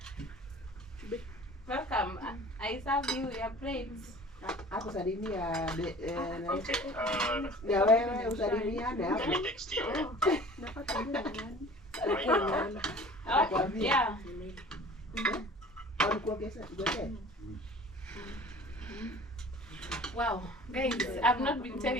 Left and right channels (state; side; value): normal; both; correlation 0.45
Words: Welcome. I serve you your plates. Hapo salimia Okay. na wewe usalimiane Let hapo. me text you. Right Oh, yeah. Walikuongeza ngoja. Wow, guys, I've not been